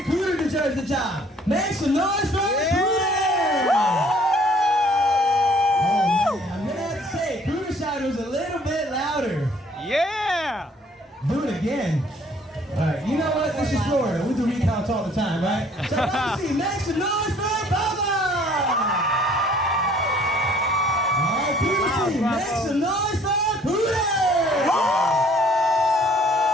Cooter deserves the job, make some noise for Cooter! Oh, man, I'm going to have to say, Cooter's side was a little bit louder. Yeah. Do it again. All right, you know what? This is Florida. We do recounts all the time, right? So, Bubba, make some noise for Bubba! All right, Cooter team, make some noise for Cooter!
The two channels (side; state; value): both; normal; correlation 0.58